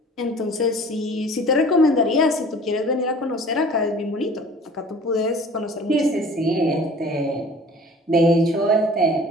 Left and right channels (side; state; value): both; normal; correlation 0.47